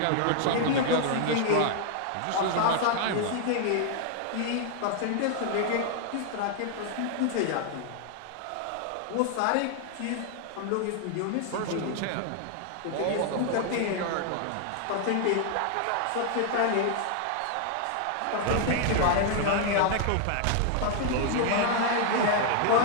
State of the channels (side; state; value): both; different; correlation 0.00